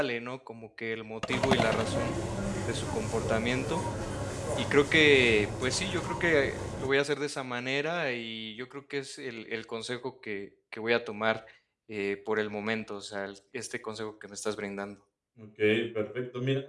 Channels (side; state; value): both; identical; correlation 1.00